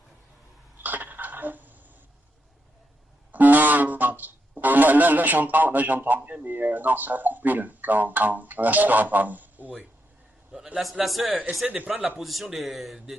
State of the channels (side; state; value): both; normal; correlation 0.83